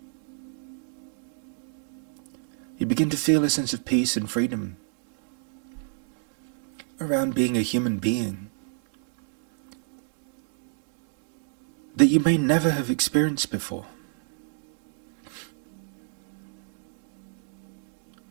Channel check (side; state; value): left; silent; digital silence